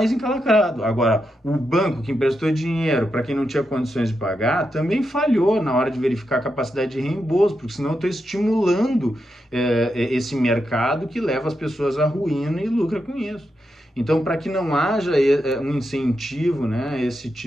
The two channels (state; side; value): normal; both; correlation 0.85